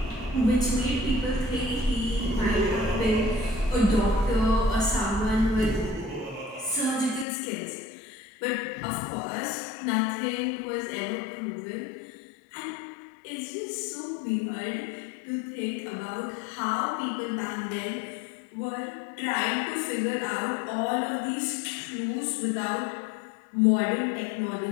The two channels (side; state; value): right; drops out; at 7.2 s